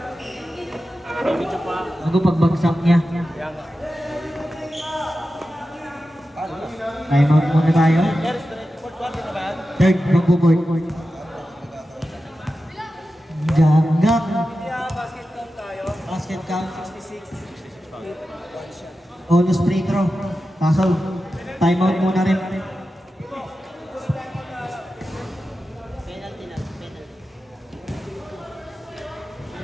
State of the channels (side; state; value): both; normal; correlation 0.92